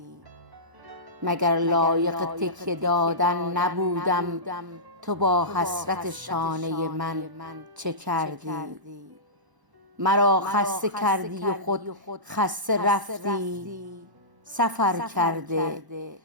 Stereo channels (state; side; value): late; left; 1.0 ms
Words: مگر لایق تکیه دادن نبودم، تو با حسرت شانه من چه کردی؟ مرا خسته کردی و خود خسته رفتی، سفر کرده